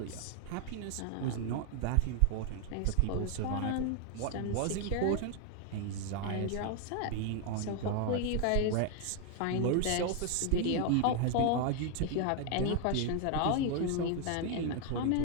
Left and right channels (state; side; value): different; both; correlation 0.00